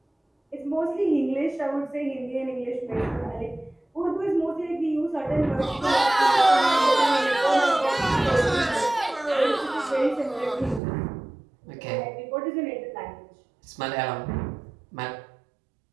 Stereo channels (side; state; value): left; drops out; at 10.8 s